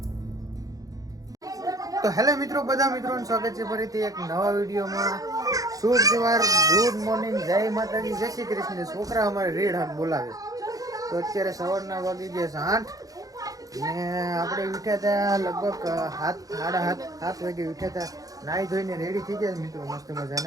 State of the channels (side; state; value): left; late; 0.17 ms